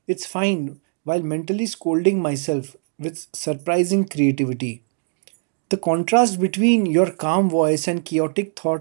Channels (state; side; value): silent; left; 61 dB below the other